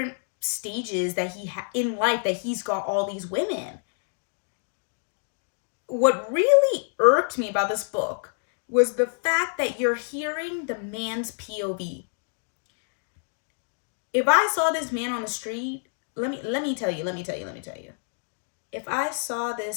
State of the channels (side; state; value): right; silent; digital silence